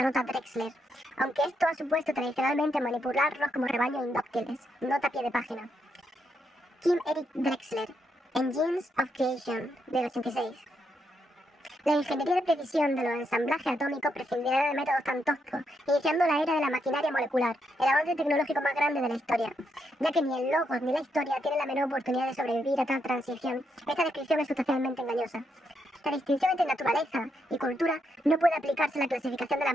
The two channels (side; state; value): both; normal; correlation 0.79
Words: Drexler, aunque esto ha supuesto tradicionalmente manipularlos como rebaños indóciles. Nota a pie de página. Kim Eric Drexler, Engines of Creation, del 86. La ingeniería de precisión de los ensamblajes atómicos prescindirá de métodos tan toscos, iniciando la era de la maquinaria molecular, el avance tecnológico más grande de la historia. Ya que ni el logos ni la historia tienen la menor oportunidad de sobrevivir a tal transición, esta descripción es sustancialmente engañosa. La distinción entre naturaleza y cultura no puede aplicarse a la clasificación de las